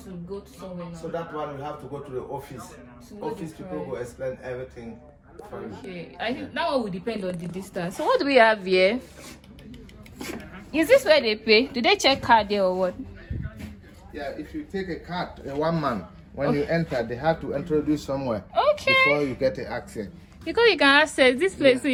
to go to somewhere now? So that one you have to go to the office. Office people will explain everything for you. Okay, I think that one will depend on the distance. So what do we have here? Is this where they pay? Do they check card there or what? Yeah, if you take a card, a one man, when you enter, they have to introduce somewhere. Okay. Before you get the access. Because you can access this place, so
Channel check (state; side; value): identical; both; correlation 1.00